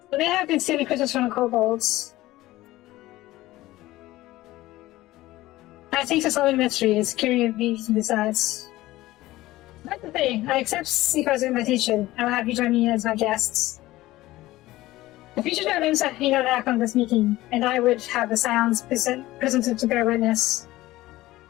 So they have been stealing crystals from the kobolds. I think to solve the mystery is curious beings besides. That's the thing. I accept Seeker's invitation. I will have you join me as my guests. The future dragons have been attack on this meeting, and I would have the Scions presented to bear witness.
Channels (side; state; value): right; quieter; 17.2 dB